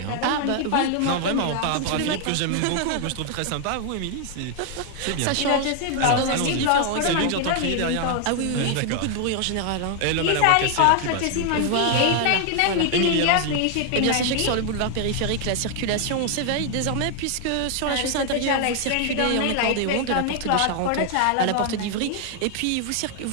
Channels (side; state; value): both; different; correlation 0.00